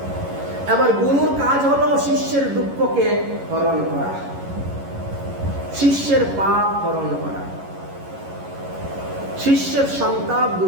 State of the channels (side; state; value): left; late; 11 ms